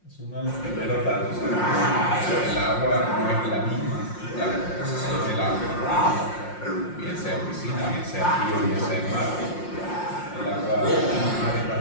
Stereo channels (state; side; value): late; right; 5.6 ms